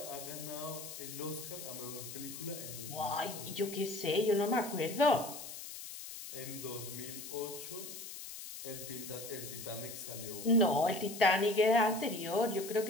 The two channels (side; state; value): left; noise; hiss, 10 dB below the sound